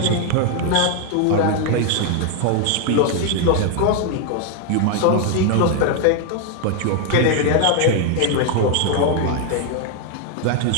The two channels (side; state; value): both; different; correlation 0.00